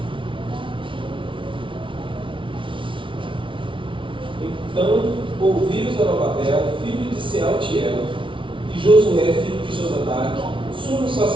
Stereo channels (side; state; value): left; late; 0.25 ms